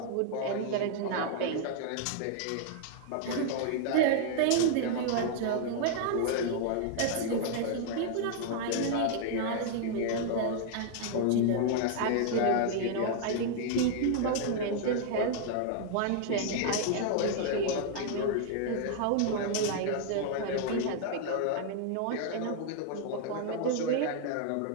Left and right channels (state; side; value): different; both; correlation 0.00